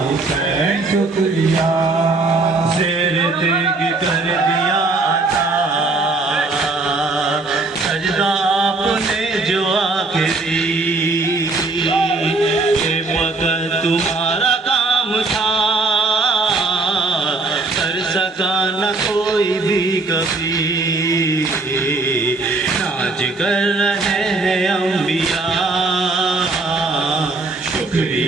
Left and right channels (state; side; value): quieter; left; 3.4 dB